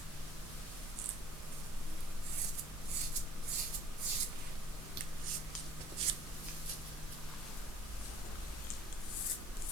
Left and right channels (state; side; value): normal; both; correlation 0.53